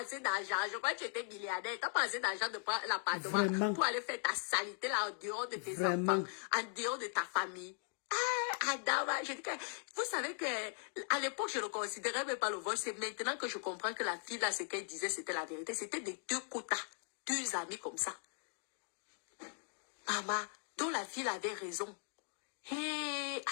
d'argent. Je crois que tu étais milliardaire. T'as pas assez d'argent de prendre l'appartement pour aller faire ta saleté là en dehors de tes enfants, en dehors de ta famille. Ah, Adama, je dis que, vous savez que, à l'époque, je ne considérais même pas le vol. C'est maintenant que je comprends que la fille là, ce qu'elle disait, c'était la vérité. C'était des deux quotas, deux amis comme ça. Maman, dont la fille avait raison. Hé,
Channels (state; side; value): silent; right; 52 dB below the other